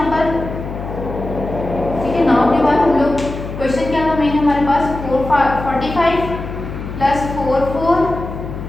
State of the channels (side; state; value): left; noise; hum, 8 dB below the sound